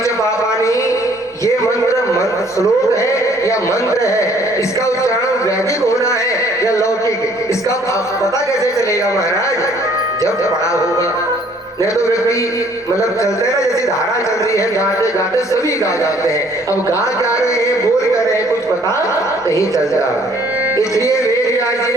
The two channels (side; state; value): both; normal; correlation 0.60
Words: जब पापानी, ये मंत्र श्लोक है या मंत्र है, इसका उच्चारण वैदिक होना है या लौकिक, इसका पता कैसे चलेगा महाराज, जब पढ़ा होगा। नहीं तो व्यक्ति मतलब चलते हैं ना, जैसी धारा चल रही है, गाते गाते सभी गा जाते हैं। अब गा जा रहे हैं, बोल कर रहे हैं, कुछ पता नहीं चलता। इसलिए वेदव्यास जी